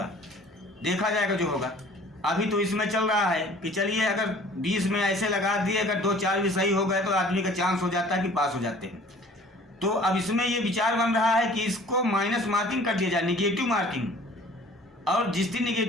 देखा जाएगा जो होगा। अभी तो इसमें चल रहा है कि चलिए अगर 20 में ऐसे लगा दिए, अगर 2-4 भी सही हो गए तो आदमी का चांस हो जाता है कि पास हो जाते हैं। तो अब इसमें ये विचार बन रहा है कि इसको माइनस मार्किंग कर दिया जाए, निगेटिव मार्किंग, और जिस दिन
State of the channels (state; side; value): normal; both; correlation 0.50